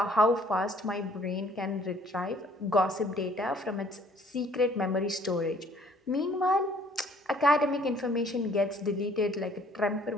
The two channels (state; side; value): normal; both; correlation 0.59